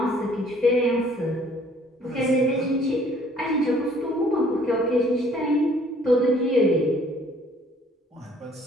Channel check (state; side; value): normal; both; correlation 0.58